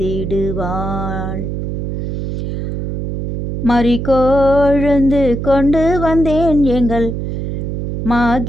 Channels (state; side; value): noise; right; hum, 4 dB below the sound